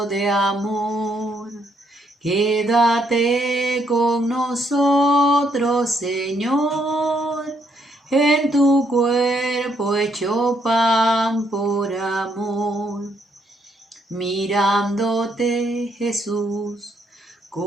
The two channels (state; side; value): normal; both; correlation 0.73